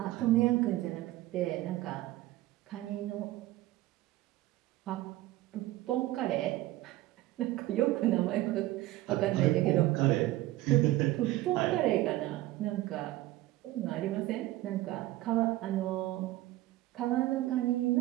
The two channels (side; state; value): left; quieter; 16.7 dB